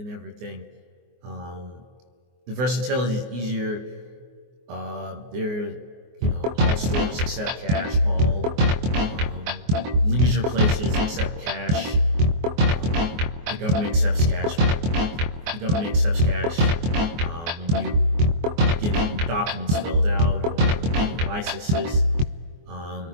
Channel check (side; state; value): left; late; 24 ms